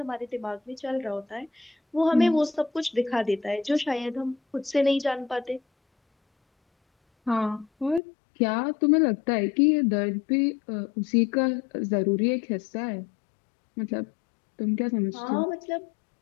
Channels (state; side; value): drops out; right; at 8.0 s